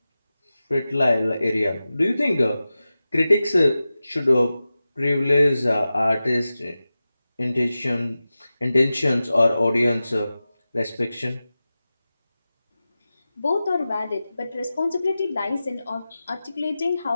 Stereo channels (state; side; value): inverted; both; correlation -0.95